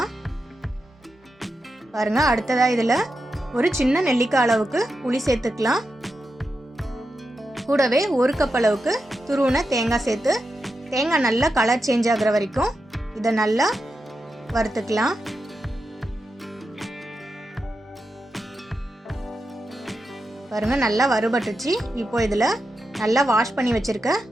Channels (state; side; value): normal; both; correlation 0.88